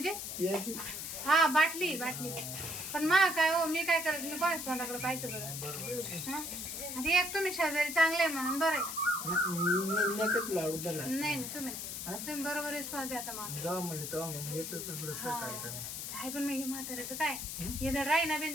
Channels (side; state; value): left; noise; hiss, 6 dB below the sound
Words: यायची हा बाटली पण मा काय हो मी काय करायचं मी कोणाच तोंडाकडे पाहायचं बरं आता एक तुम्ही शेजारी चांगले म्हणून बरं नाही तुम्ही बरोबर रिस्पॉन्स द्या आता काय पण मी म्हाताऱ्याचं काय हे तर राही ना बिन